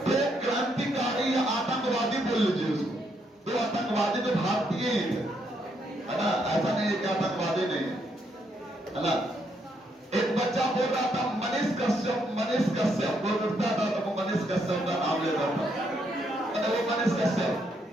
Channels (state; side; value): normal; both; correlation 0.75